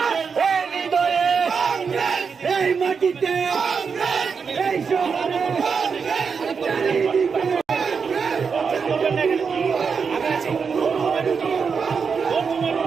এই হৃদয়ে এই মাটিতে এই শহরে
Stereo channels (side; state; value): left; quieter; 5.8 dB